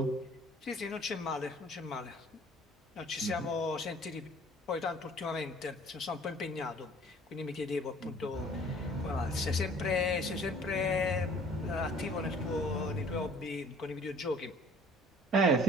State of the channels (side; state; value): both; normal; correlation 0.52